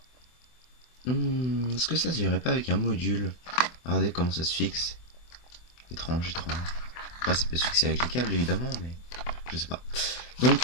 est-ce que ça se verrait pas avec un module? Regardez comment ça se fixe. Étrange. Après ça peut se fixer avec les câbles évidemment, mais je sais pas. Donc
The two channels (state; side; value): late; right; 24 ms